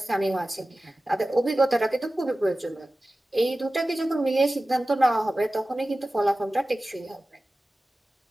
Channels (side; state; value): both; normal; correlation 0.96